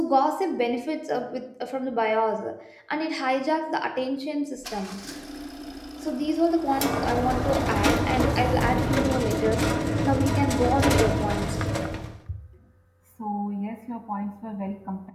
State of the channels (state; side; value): identical; both; correlation 1.00